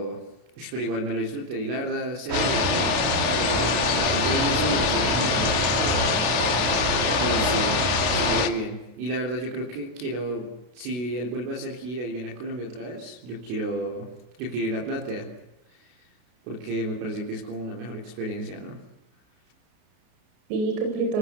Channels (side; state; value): left; late; 32 ms